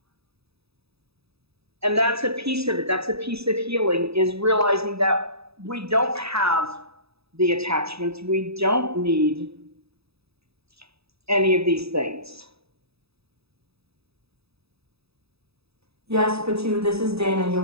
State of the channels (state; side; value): late; left; 0.78 ms